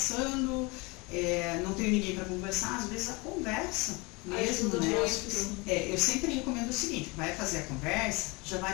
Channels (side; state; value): right; quieter; 26.6 dB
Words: não tenho ninguém para conversar. Às vezes a conversa mesmo, né? Eu sempre recomendo o seguinte, vai fazer a conversa, já